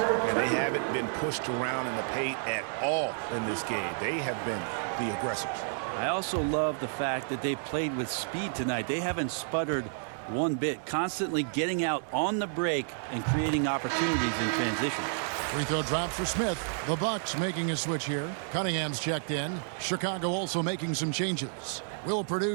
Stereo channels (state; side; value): silent; left; digital silence